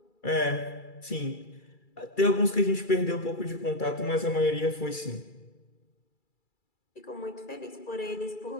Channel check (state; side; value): late; right; 2.3 ms